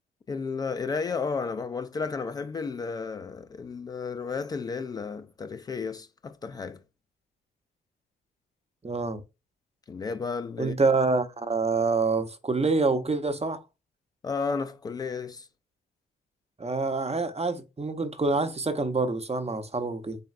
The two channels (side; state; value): both; normal; correlation 0.54